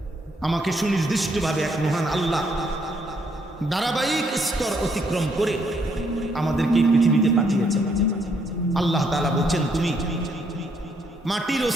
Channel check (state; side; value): normal; both; correlation 0.72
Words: আমাকে সুনির্দিষ্টভাবে এক মহান আল্লাহ ধারাবাহিক স্তর অতিক্রম করে আমাদেরকে পৃথিবীতে পাঠিয়েছে। আল্লাহ তাআলা বলছেন, তুমি মাটির